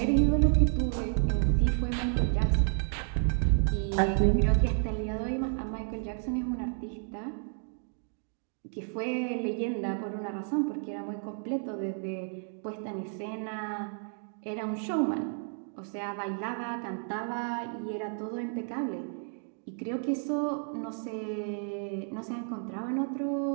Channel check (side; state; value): left; silent; 57 dB below the other